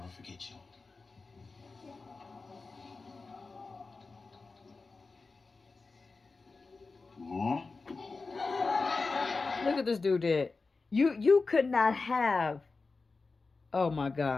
forget you. Look at this dude did. You could not have. Oh my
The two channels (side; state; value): right; quieter; 4.0 dB